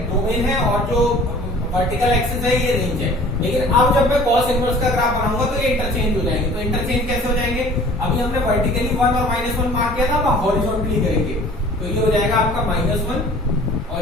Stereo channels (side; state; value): both; normal; correlation 0.48